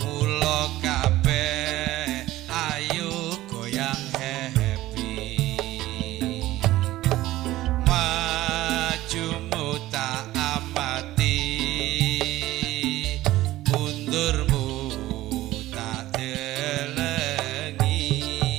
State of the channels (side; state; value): left; quieter; 16.2 dB